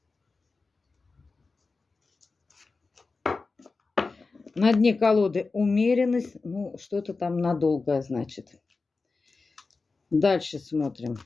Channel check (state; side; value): quieter; right; 4.0 dB